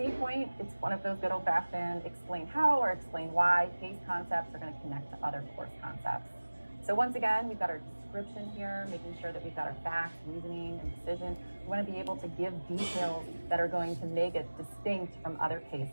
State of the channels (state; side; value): inverted; both; correlation -1.00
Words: point, it's one of those good old-fashioned explain how or explain why. Case concepts are going to connect to other course concepts. So once again, we've got our description here, making sure that we've got our facts, reasoning, and decision. We want to be able to give details that are going to make it distinct from other